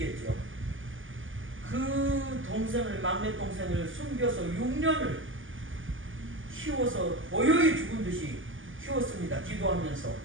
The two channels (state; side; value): late; left; 0.58 ms